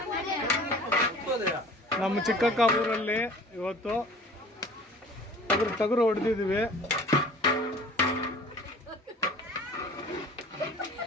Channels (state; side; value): normal; both; correlation 0.46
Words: ನಮ್ಮ ಚಿಕ್ಕಕ್ಕ ಊರಲ್ಲಿ ಇವತ್ತು ಟಗರು ಹೊಡೆದಿದ್ವಿ.